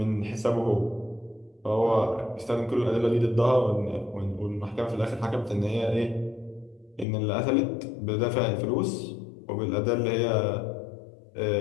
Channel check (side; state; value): right; drops out; at 7.1 s